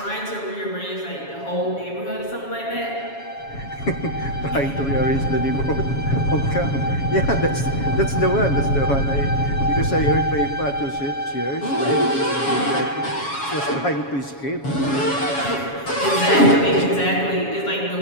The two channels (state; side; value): late; right; 7.2 ms